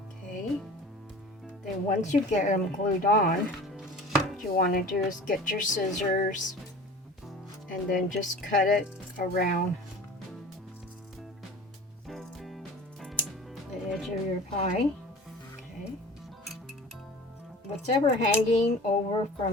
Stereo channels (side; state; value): both; normal; correlation 0.40